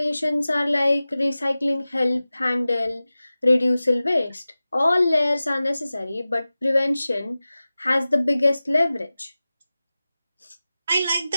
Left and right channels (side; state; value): both; inverted; correlation -0.96